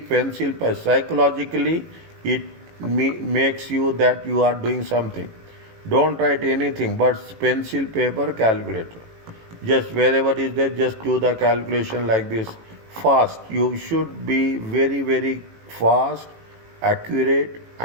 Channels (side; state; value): left; late; 18 ms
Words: pencil. Psychologically, it makes you that you are doing something. Don't write anything but pencil, paper, calculator. Just wherever is there, just do the calculation like this. Fast. You should be very, very fast, accurate,